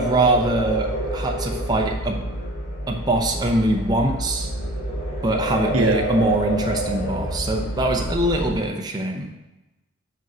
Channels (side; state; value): both; normal; correlation 0.43